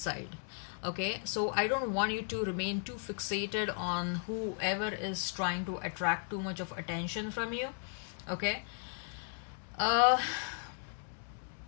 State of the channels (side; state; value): right; silent; 54 dB below the other